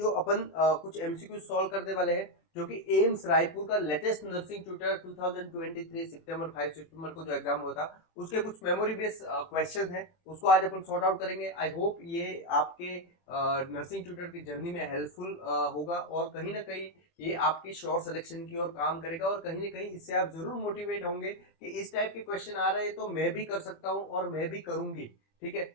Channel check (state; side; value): late; right; 24 ms